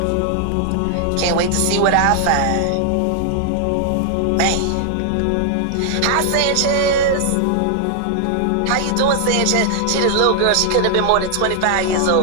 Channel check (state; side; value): different; both; correlation 0.00